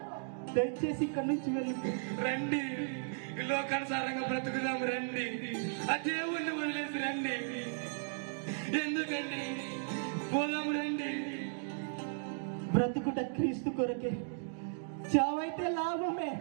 దయచేసి ఇక్కడి నుంచి వెళ్ళిపో. రండి, ఈ లోకానుసారంగా బ్రతుకుదాం. రండి, ఆ దేవుణ్ణి వదిలేసి రండి. ఎందుకండి? పోదాం రండి. బ్రతుకుట క్రీస్తు కొరకే, చావైతే లాభమే.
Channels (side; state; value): left; silent; digital silence